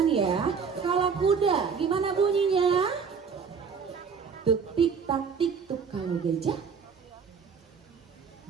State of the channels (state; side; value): quieter; left; 5.9 dB